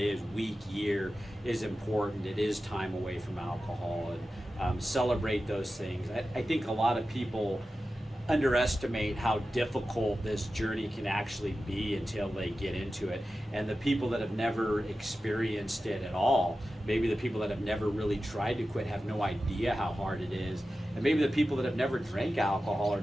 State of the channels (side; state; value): both; normal; correlation 0.93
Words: week, year, is important. It is time away from alcohol, and celebrate those things. I think a lot of people underestimate how difficult this journey can actually be until they get into it. And the people that have never experienced it at all, maybe the people that have never really tried to quit, have no idea how hard it is. And maybe the people that have never drank alcohol or